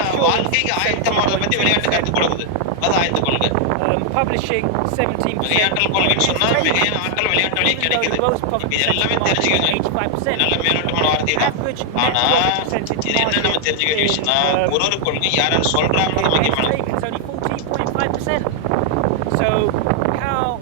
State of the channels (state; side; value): different; both; correlation 0.00